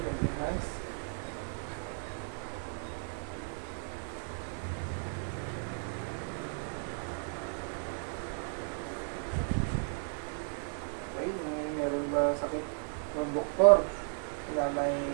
holding hands. doktor na may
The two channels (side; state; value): left; silent; 55 dB below the other